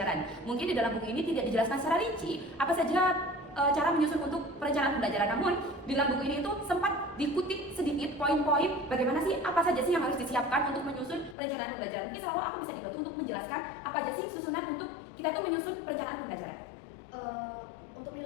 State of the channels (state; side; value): drops out; right; at 11.4 s